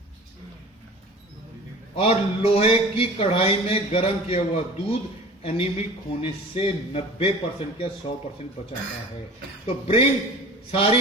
और लोहे की कढ़ाई में गर्म किया हुआ दूध एनीमिक होने से 90% या 100% बचाता है। तो ब्रिंग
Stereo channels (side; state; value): both; normal; correlation 0.41